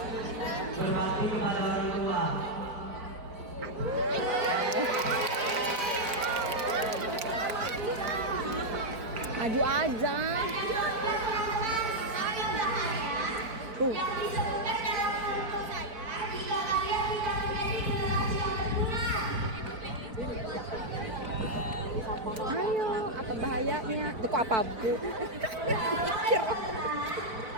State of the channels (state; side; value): late; left; 4.5 ms